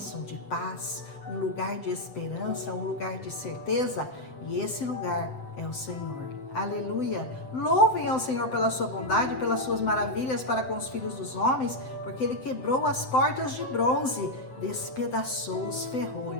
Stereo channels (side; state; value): right; late; 7.9 ms